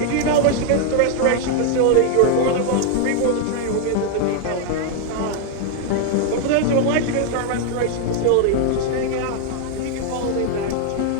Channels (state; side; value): different; both; correlation 0.00